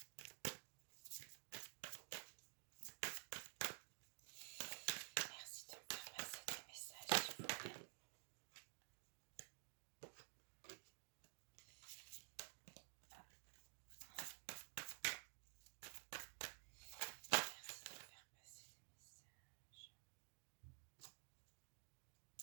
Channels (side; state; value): left; silent; digital silence